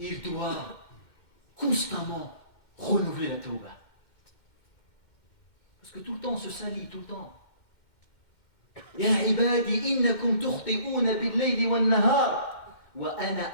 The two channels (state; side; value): late; right; 2.1 ms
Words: doit constamment renouveler la tawbah. Parce que tout le temps on se salit, tout le temps. Ya ibadi innakum tukhti'una bil-layli wan-nahar wa ana